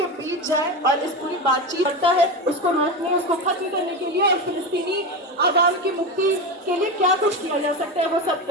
बीच जाए और इस पूरी बातचीत करता है उसको रोकने, उसको खत्म करने के लिए और फिलिस्तीनी आवाम की मुक्ति के लिए क्या कुछ किया जा सकता है वो सब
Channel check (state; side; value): normal; both; correlation 0.19